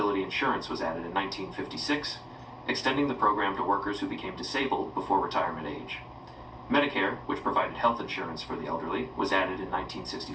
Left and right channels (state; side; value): identical; both; correlation 1.00